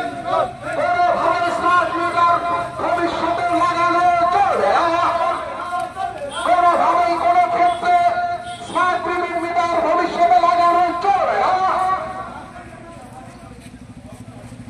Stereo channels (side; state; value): both; identical; correlation 1.00